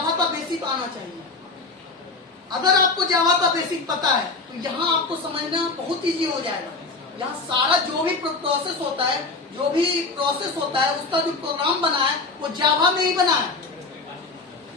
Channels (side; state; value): right; quieter; 3.7 dB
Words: का बेसिक आना चाहिए। अगर आपको जावा का बेसिक पता है तो यहाँ आपको समझना बहुत इजी हो जाएगा। यहाँ सारा जो भी प्रोसेस होता है, जो भी प्रोसेस होता है, उसका जो प्रोग्राम बना है वो जावा में ही बना है,